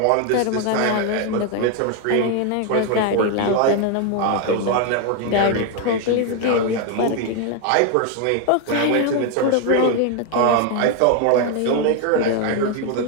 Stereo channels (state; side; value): different; both; correlation 0.01